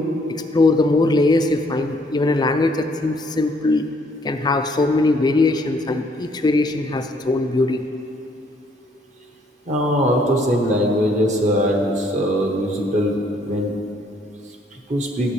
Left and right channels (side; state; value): both; normal; correlation 0.65